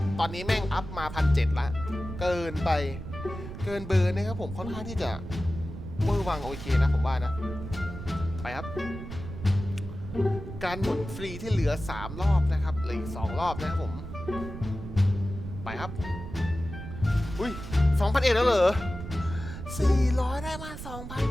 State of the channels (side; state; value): right; noise; rumble, 10 dB below the sound